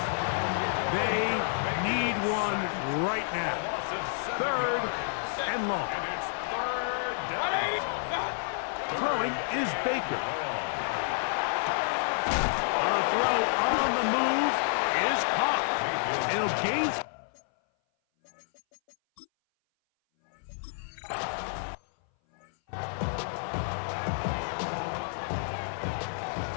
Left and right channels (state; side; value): silent; right; 57 dB below the other